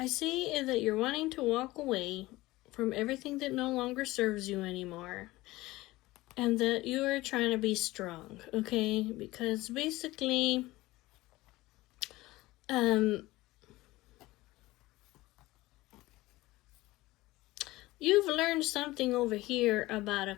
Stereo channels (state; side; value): quieter; right; 18.9 dB